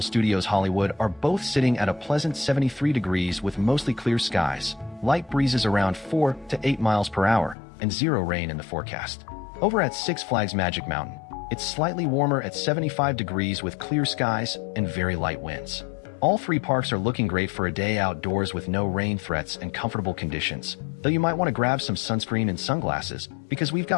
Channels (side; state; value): right; drops out; at 7.6 s